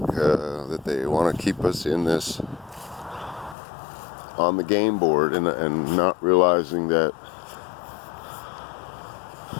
that they want to keep us in this, on the game board, and not realizing that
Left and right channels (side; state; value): right; drops out; at 3.6 s